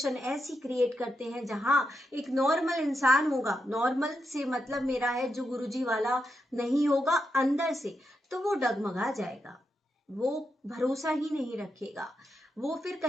ऐसी क्रिएट करते हैं जहां एक नॉर्मल इंसान होगा, नॉर्मल से मतलब मेरा है जो गुरुजी वाला नहीं होगा अंदर से, तो वो डगमगा जाएगा, वो भरोसा ही नहीं रखेगा, वो फिर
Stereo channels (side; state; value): both; normal; correlation 0.85